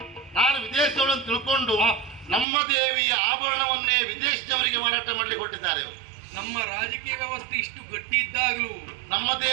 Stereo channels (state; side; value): drops out; left; at 2.5 s